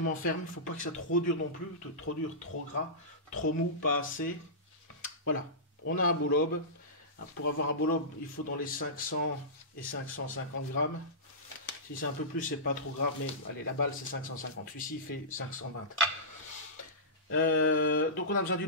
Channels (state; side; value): normal; both; correlation -0.19